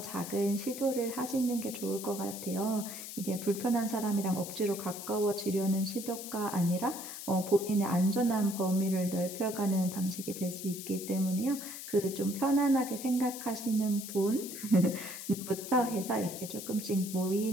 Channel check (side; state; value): left; noise; hiss, 10 dB below the sound